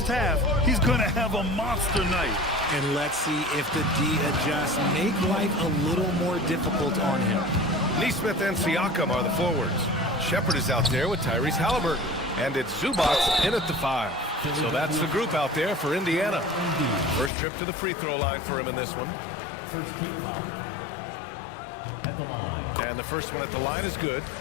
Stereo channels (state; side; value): drops out; right; at 17.3 s